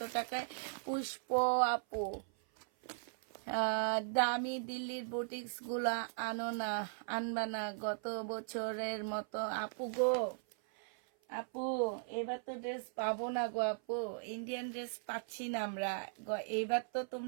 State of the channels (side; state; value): left; silent; 52 dB below the other